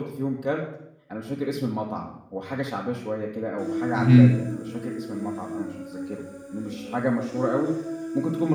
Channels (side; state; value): both; identical; correlation 1.00